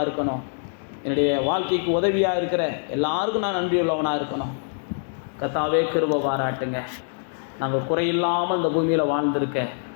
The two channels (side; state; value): right; silent; digital silence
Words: இருக்கணும். என்னுடைய வாழ்க்கைக்கு உதவியாக இருக்கிற எல்லாருக்கும் நான் நன்றியுள்ளவனாக இருக்கணும். கர்த்தாவே கிருபை பாராட்டுங்க. நாங்கள் குறையில்லாமல் இந்த பூமியில் வாழ்ந்திருக்க